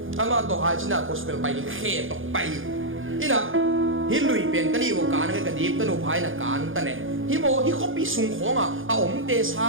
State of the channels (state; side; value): late; left; 0.58 ms